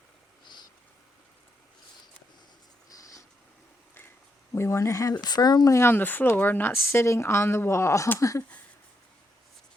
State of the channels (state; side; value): normal; both; correlation 0.80